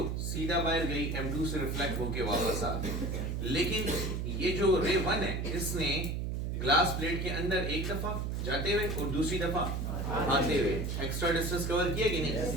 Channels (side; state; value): right; noise; hum, 2 dB below the sound